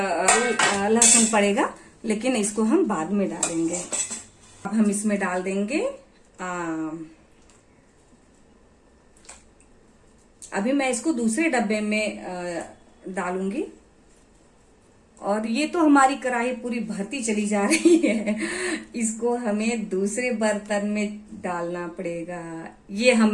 लहसुन पड़ेगा, लेकिन इसको हम बाद में डालेंगे। अब हम इसमें डाल देंगे अभी मैं इसको दूसरे डब्बे में डालूंगी और ये तो हमारी कढ़ाई पूरी भरती चली जा रही है। इसको हमें दूसरे बर्तन में डालना पड़ेगा। ये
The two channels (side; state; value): both; identical; correlation 1.00